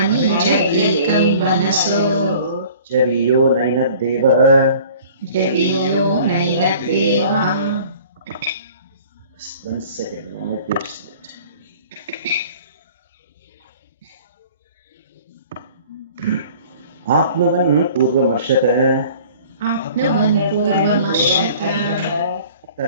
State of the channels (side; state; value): both; inverted; correlation -0.48